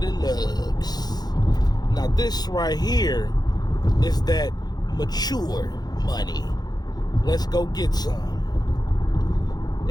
of lugs. Now this right here is that mature money. Let's go get some.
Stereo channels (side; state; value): right; late; 0.19 ms